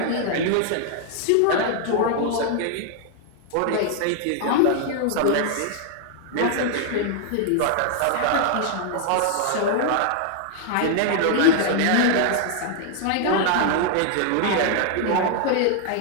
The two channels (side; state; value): both; different; correlation 0.00